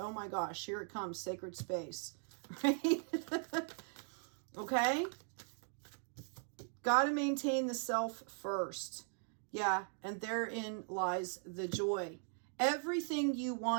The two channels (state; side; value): silent; left; 51 dB below the other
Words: my gosh, here it comes, sacred space. Right? Okay? Got to maintain the self first. Yeah, and therein lies the joy. Everything you